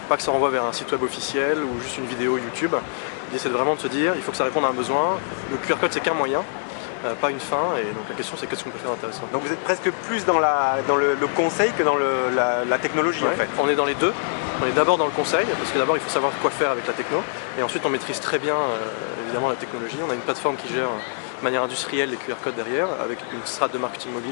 Pas que ça renvoie vers un site web officiel ou juste une vidéo YouTube. L'idée c'est vraiment de se dire il faut que ça réponde à un besoin. Le QR code c'est qu'un moyen, pas une fin, et donc la question c'est qu'est-ce qu'on peut faire d'intéressant. Vous êtes presque plus dans le conseil que dans la technologie. Ouais, on est dans les deux. On est d'abord dans le conseil, parce que d'abord il faut savoir quoi faire avec la techno, et ensuite on maîtrise très bien évidemment la technologie. On a une plateforme qui gère de manière industrielle les QR codes derrière, avec une strate de marketing mobile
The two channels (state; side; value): silent; right; digital silence